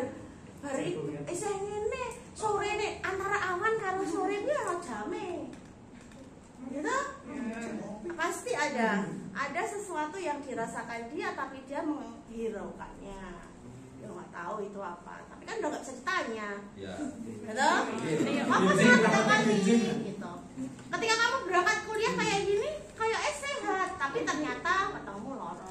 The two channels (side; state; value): both; identical; correlation 1.00